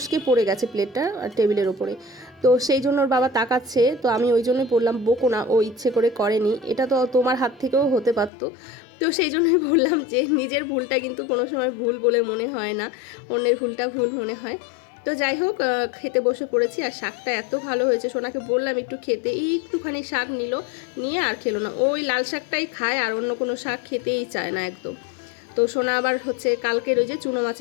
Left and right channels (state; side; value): drops out; right; at 8.3 s